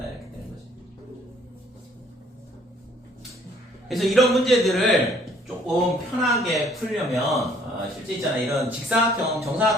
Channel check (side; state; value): both; normal; correlation 0.60